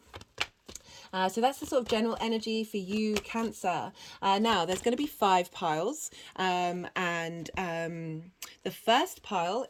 So that's the sort of general energy for you, Cancer. Now, there's going to be 5 piles. The first pile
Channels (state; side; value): identical; both; correlation 1.00